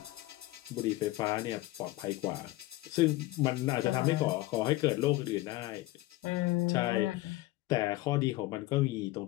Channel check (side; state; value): right; quieter; 18.5 dB